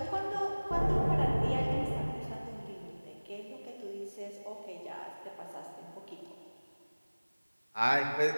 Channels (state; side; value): inverted; both; correlation -1.00